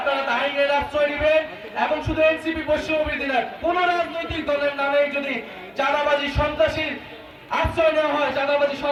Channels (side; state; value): both; identical; correlation 1.00